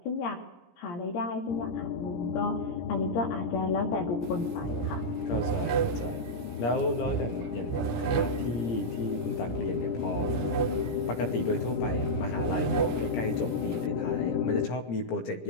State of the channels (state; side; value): late; right; 17 ms